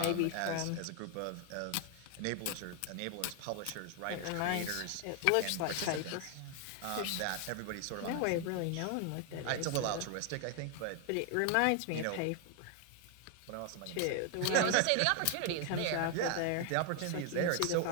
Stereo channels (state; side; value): different; both; correlation 0.00